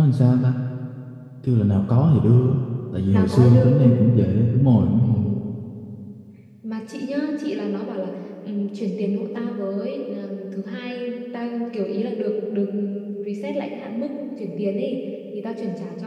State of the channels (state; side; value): identical; both; correlation 1.00